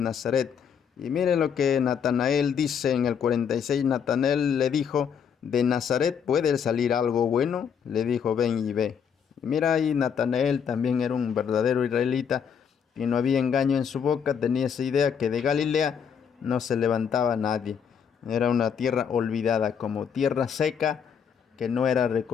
Y mire lo que Natanael dice en el 46. Natanael le dijo: ¿de Nazaret puede salir algo bueno? Le dijo: ven y ve. Y mira, ahí Natanael también era un verdadero israelita, y no había engaño en su boca. Tenía esa idea que de Galilea no se levantaba nadie. Era una tierra olvidada, como tierra seca, que no era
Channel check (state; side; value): quieter; right; 7.3 dB